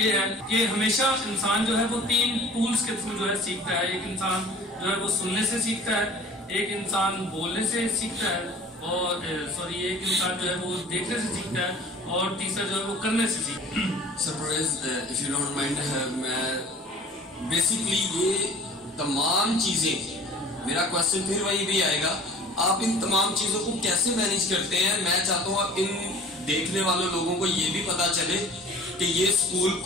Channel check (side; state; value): both; normal; correlation 0.46